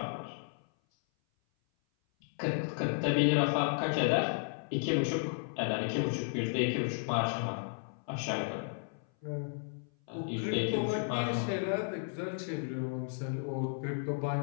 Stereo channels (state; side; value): silent; right; 55 dB below the other